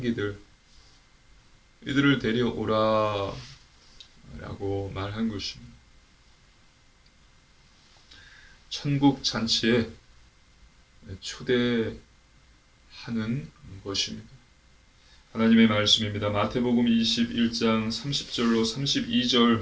이들을 데려오라 라고 말한 것입니다. 천국 잔치에 초대하는 것입니다. 하나님의 말씀입니다. 마태복음 21장 30절로 32절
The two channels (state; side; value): identical; both; correlation 1.00